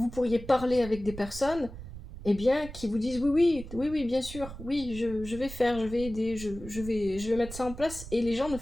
pourriez parler avec des personnes eh bien, qui vous disent oui, bien sûr, oui, je vais faire, je vais aider, je vais mettre ça en place, et les gens ne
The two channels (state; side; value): noise; right; rumble, 13 dB below the sound